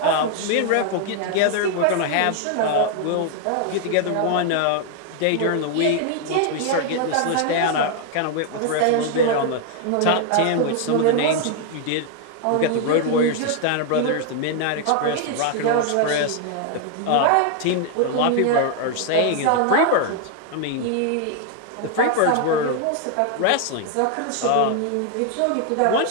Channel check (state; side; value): different; both; correlation 0.00